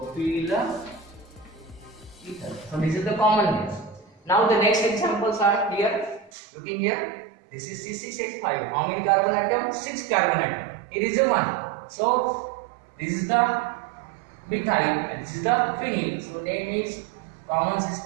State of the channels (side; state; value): left; drops out; at 6.3 s